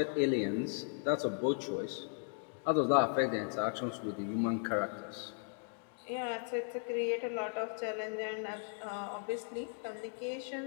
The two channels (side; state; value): right; silent; 53 dB below the other